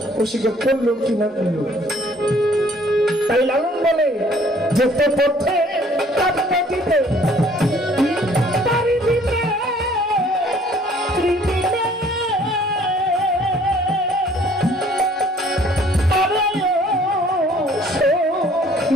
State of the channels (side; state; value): both; normal; correlation 0.57